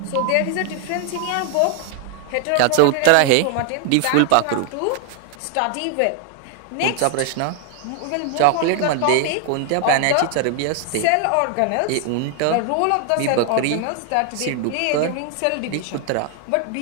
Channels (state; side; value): different; both; correlation 0.00